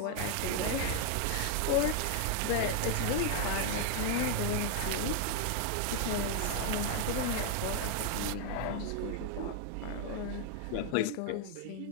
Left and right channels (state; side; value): different; both; correlation 0.00